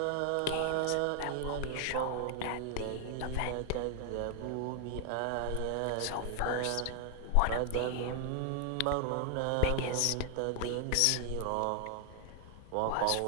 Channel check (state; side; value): different; both; correlation 0.00